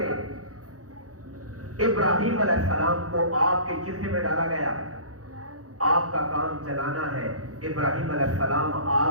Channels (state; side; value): late; left; 0.66 ms